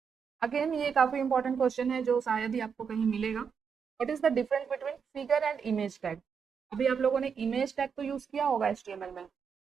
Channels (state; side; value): quieter; left; 6.5 dB